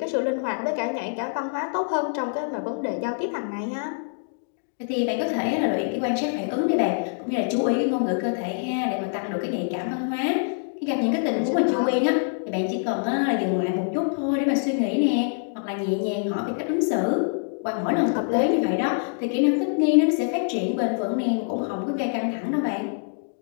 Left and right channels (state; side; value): silent; right; digital silence